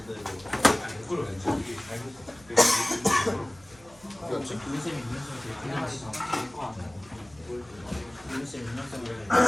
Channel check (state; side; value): noise; right; hum, 26 dB below the sound